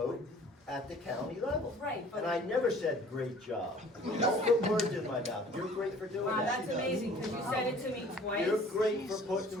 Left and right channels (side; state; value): both; normal; correlation 0.51